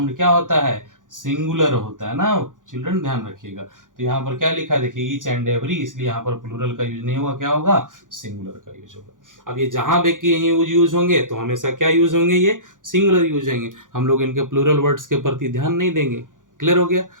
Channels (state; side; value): late; left; 0.88 ms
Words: क्या होता है? सिंगुलर होता है ना। चिल्ड्रन ध्यान रखिएगा। तो यहाँ पर क्या लिखा है देखिए, ईच एंड एवरी, इसलिए यहाँ पर प्लूरल का यूज नहीं होगा, क्या होगा? सिंगुलर का यूज होगा। अब ये जहां पे कि यूज होंगे तो हमेशा क्या यूज होंगे? ये सिंगुलर यूज होंगे। हम लोग इनके प्लूरल वर्ड्स के प्रति ध्यान नहीं देंगे। क्लियर हो गया?